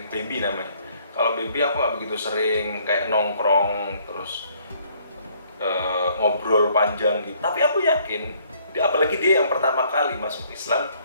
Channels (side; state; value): both; inverted; correlation -0.63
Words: baby namanya. Kalau baby aku nggak begitu sering kayak nongkrong terus ngobrol panjang gitu. Tapi aku yakin, apalagi dia yang pertama kali masuk Islam